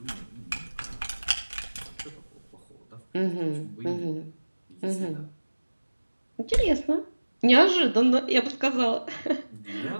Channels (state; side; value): inverted; both; correlation -1.00